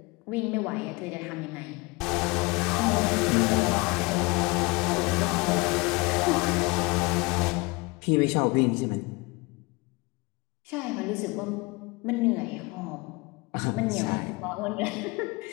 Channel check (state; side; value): quieter; right; 25.9 dB